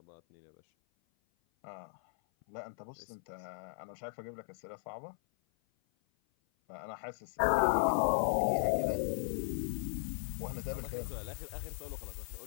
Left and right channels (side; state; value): right; silent; 53 dB below the other